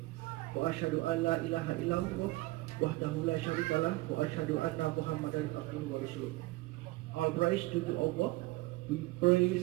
Wa asyhadu an la ilaha illallah wahdahu la syarikalah wa asyhadu anna Muhammadan abduhu wa rasuluh. All praise to Allah. We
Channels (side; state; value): left; quieter; 20.3 dB